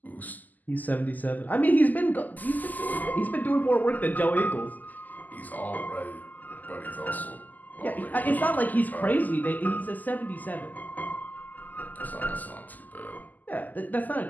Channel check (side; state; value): right; late; 0.083 ms